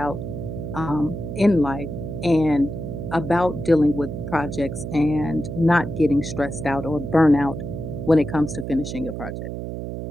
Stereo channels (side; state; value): right; noise; hum, 6 dB below the sound